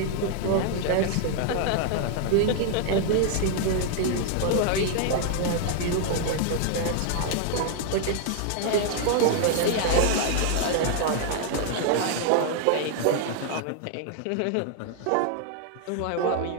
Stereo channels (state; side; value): different; both; correlation 0.00